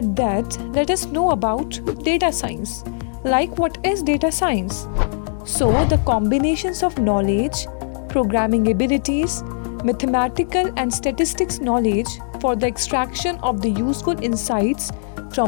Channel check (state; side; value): silent; right; digital silence